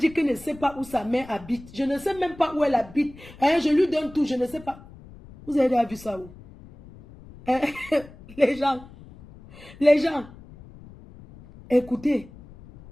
qu'elle ne sait pas où sa mère habite? Je ne sais même pas où elle habite. Hein, je lui donne tout, je ne sais pas. Vous avez déjà vu ça où? Hein? Les gens, écoutez.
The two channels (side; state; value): left; noise; rumble, 20 dB below the sound